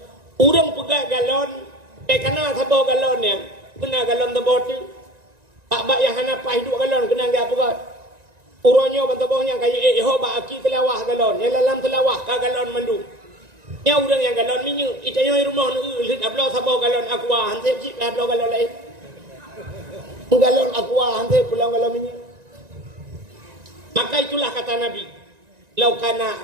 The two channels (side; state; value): left; late; 1.9 ms